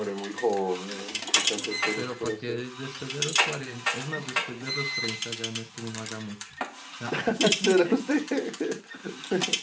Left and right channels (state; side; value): identical; both; correlation 1.00